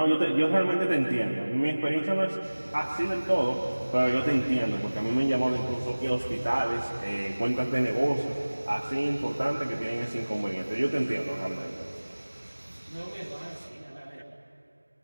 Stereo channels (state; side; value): inverted; both; correlation -1.00